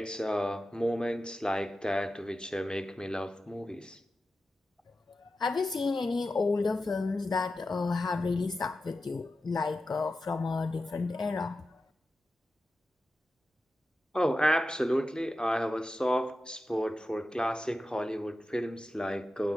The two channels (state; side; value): normal; both; correlation 0.92